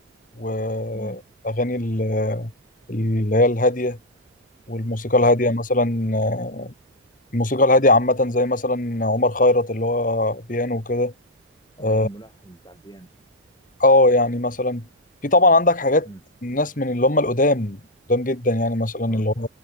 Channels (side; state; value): both; normal; correlation -0.03